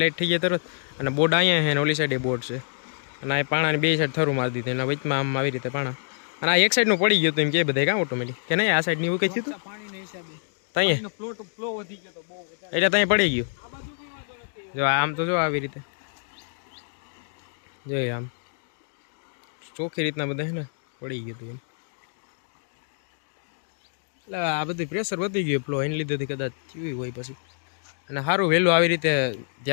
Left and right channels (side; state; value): right; silent; digital silence